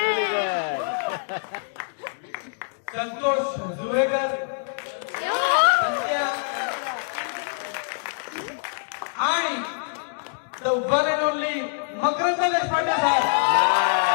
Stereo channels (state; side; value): silent; right; digital silence